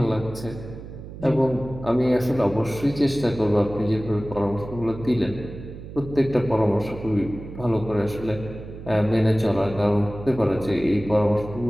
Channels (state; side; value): noise; right; hum, 13 dB below the sound